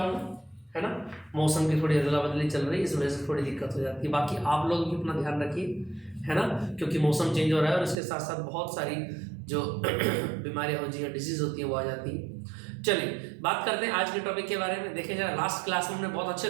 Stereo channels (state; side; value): drops out; left; at 8.0 s